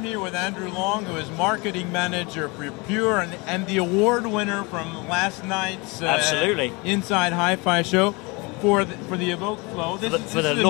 here with Andrew Long, who is marketing manager for Pure and the award winner from last night's absolutely Inside Hi-Fi show for the Evoke Flow. This is a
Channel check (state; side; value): quieter; right; 27.1 dB